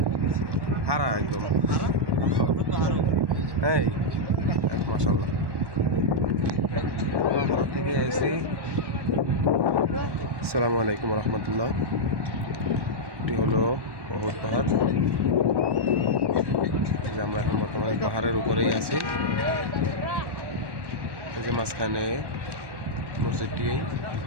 হারা একদম। হ্যাঁ মাশাআল্লাহ, হারা থেকে এসে। আসসালামু আলাইকুম রহমতুল্লাহ। এটি হলো অহুদ পাহাড়। এই যে আমরা এখন বর্তমানে পাহাড়ের উপরেই আছি। এই যে মাঝখানে মসজিদটি।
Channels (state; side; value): late; left; 1.1 ms